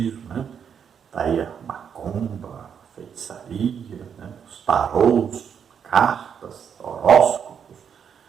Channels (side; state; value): left; quieter; 7.6 dB